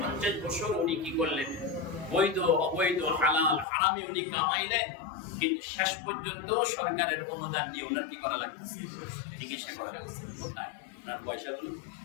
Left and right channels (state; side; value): drops out; right; at 3.7 s